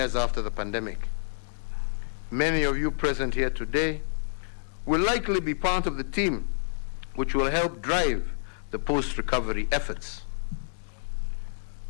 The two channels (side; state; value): right; silent; digital silence